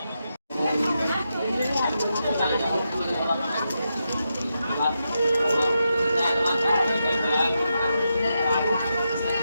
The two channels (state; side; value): inverted; both; correlation -0.86